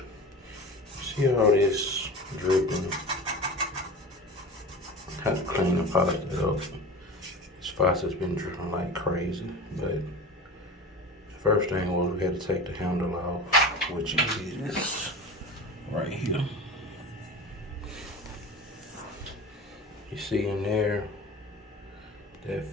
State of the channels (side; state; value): both; normal; correlation 0.33